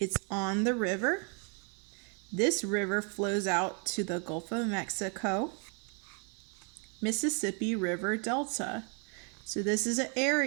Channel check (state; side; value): quieter; left; 37.4 dB